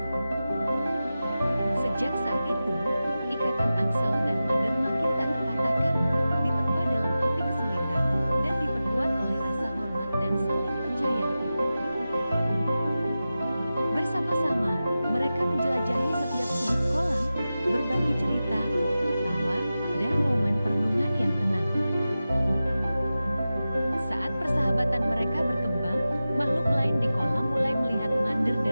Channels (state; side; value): inverted; both; correlation -0.94